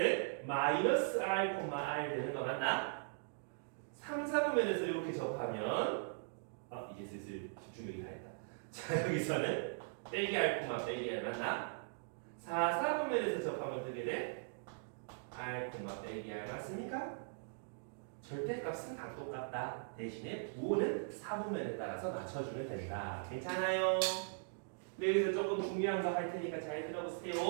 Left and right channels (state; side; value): silent; left; digital silence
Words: 마이너스 r, r 되는 거 맞나? 3, 4분면에서 이렇게 접하면 이제 슬슬 집중력이 다했다. 자, 여기서는 빼기 r, 빼기 r 맞나? 4, 4분면에서 접하면 어떻게 돼? r, 빼기 r 맞습니까? 절대값은 다 똑같다. 대신에 부호는 4분면에 따라서 맞춰주면 된다. 괜찮아요? 네, 여기서 조금 중요한 거 할 테니까 잘